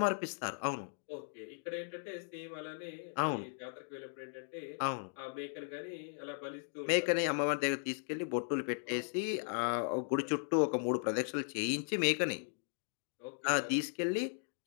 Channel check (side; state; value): right; silent; digital silence